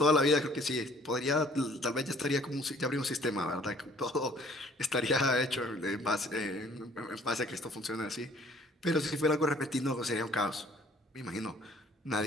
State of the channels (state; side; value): normal; both; correlation 0.57